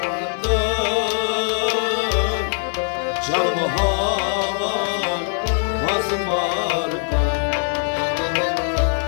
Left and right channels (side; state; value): right; silent; 65 dB below the other